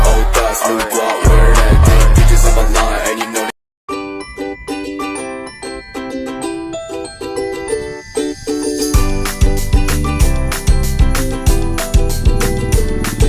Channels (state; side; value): identical; both; correlation 1.00